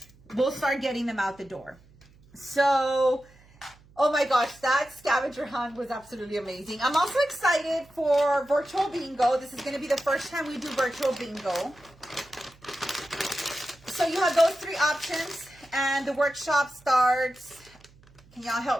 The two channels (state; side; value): noise; right; hum, 27 dB below the sound